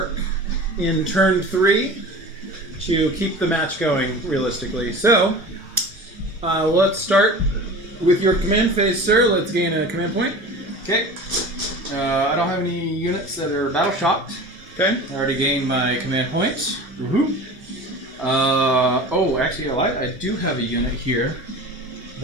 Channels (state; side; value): normal; both; correlation 0.36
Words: in turn 3 to keep the match going realistically. So, let's start with your command phase, sir. Let's gain a command point. Okay. I don't have any units that are battle shocked. Okay. I already gained my command points. Actually, I do have a unit here